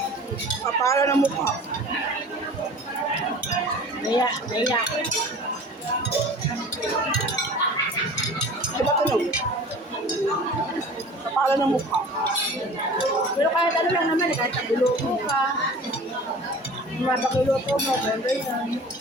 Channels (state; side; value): normal; both; correlation 0.42